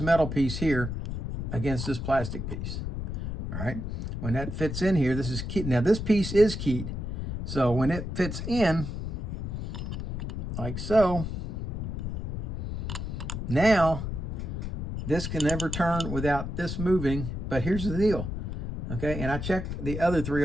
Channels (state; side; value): noise; left; rumble, 4 dB below the sound